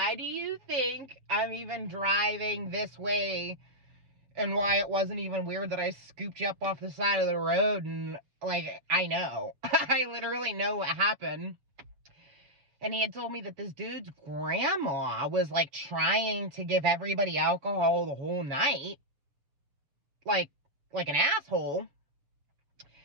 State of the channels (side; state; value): left; late; 7.3 ms